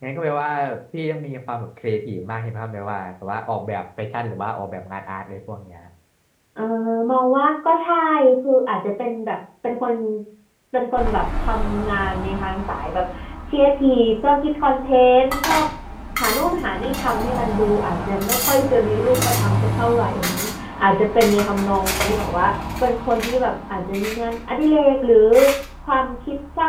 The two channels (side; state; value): both; identical; correlation 1.00